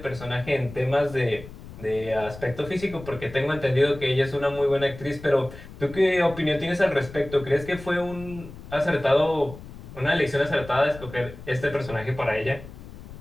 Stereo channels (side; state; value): left; noise; rumble, 15 dB below the sound